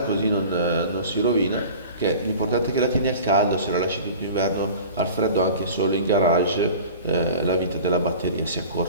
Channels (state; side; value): inverted; both; correlation -0.40